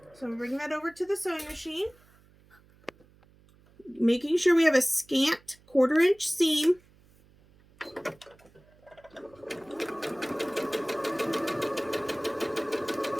So I'm bringing that over to the sewing machine. Making sure we have a scant 1/4 inch seam.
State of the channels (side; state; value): right; noise; hum, 29 dB below the sound